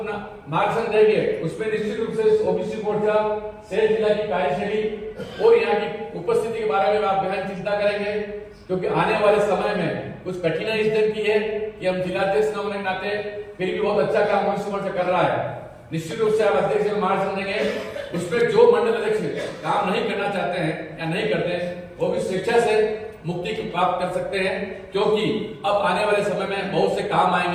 मार्गदर्शन देंगे उसमें निश्चित रूप से ओबीसी मोर्चा शेर जिला की कार्यशैली और यहाँ की उपस्थिति के बारे में आप गहन चिंता करेंगे, क्योंकि आने वाले समय में कुछ कठिनाई इस दिन की है कि हम जिलाध्यक्ष न होने के नाते फिर भी बहुत अच्छा काम ओबीसी मोर्चा कर रहा है। निश्चित रूप से आप अध्यक्ष में मार्गदर्शन देंगे, उसमें जो मंडल अध्यक्ष काम नहीं करना चाहते हैं या नहीं करते वो भी स्वेच्छा से मुक्ति प्राप्त कर सकते हैं, क्योंकि अब आने वाले समय में बहुत से काम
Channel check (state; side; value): identical; both; correlation 1.00